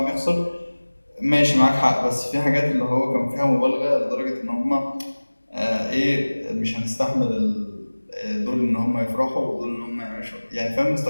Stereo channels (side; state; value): both; inverted; correlation -1.00